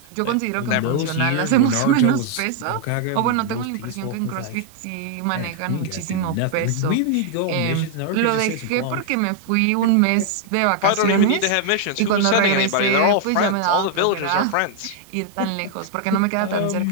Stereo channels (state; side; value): different; both; correlation 0.00